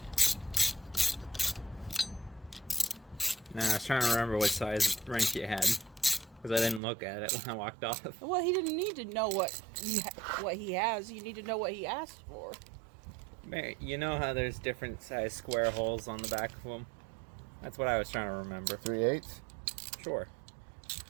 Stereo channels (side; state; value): left; drops out; at 6.8 s